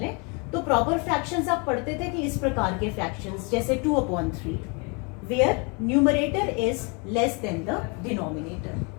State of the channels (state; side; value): quieter; right; 32.6 dB